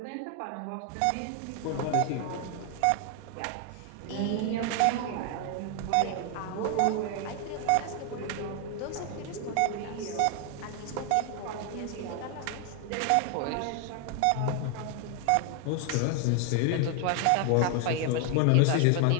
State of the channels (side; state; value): both; different; correlation 0.00